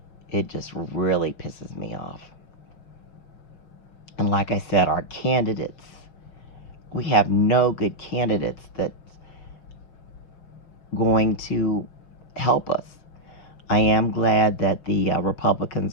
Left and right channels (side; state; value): right; late; 6.1 ms